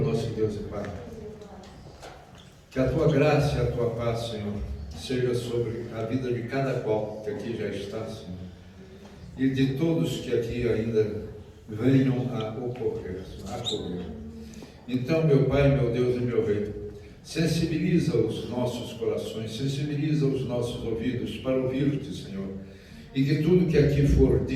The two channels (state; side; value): identical; both; correlation 1.00